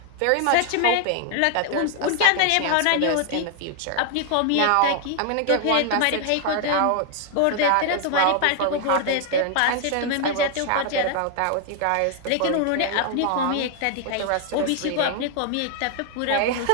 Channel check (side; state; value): both; different; correlation 0.00